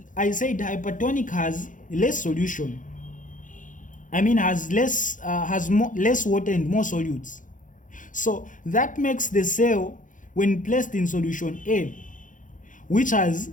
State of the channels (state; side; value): late; right; 0.38 ms